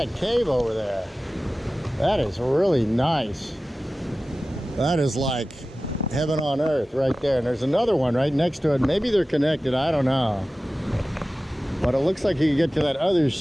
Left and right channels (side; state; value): both; normal; correlation 0.96